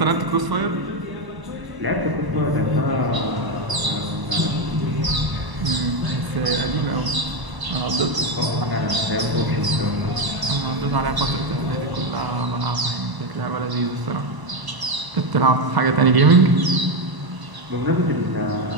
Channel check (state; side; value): late; left; 1.0 ms